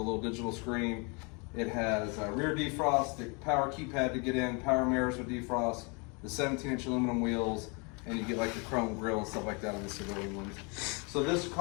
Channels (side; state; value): right; quieter; 32.3 dB